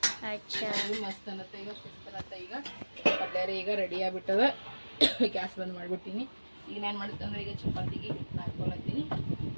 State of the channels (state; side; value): inverted; both; correlation -1.00